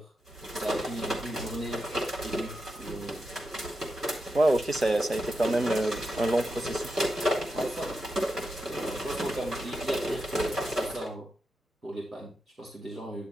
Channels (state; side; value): normal; both; correlation 0.88